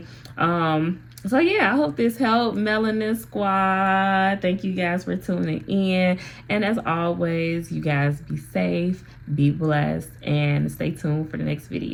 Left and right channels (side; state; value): both; identical; correlation 1.00